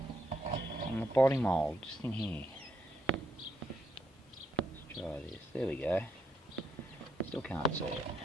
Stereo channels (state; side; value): normal; both; correlation 0.77